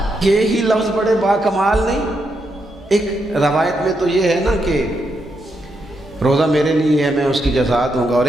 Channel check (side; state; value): both; normal; correlation 0.81